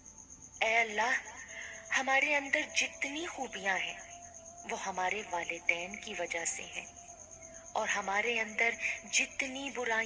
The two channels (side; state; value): both; identical; correlation 1.00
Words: اے اللہ، ہمارے اندر جتنی خوبیاں ہیں وہ ہمارے والدین کی وجہ سے ہیں، اور ہمارے اندر جتنی